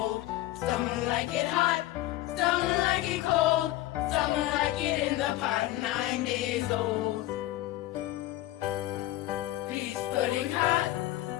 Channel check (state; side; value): quieter; right; 16.1 dB